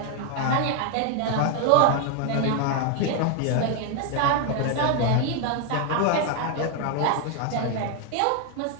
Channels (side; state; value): both; different; correlation 0.00